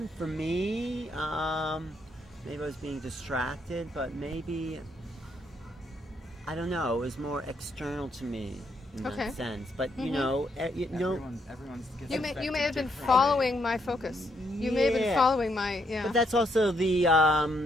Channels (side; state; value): both; normal; correlation 0.74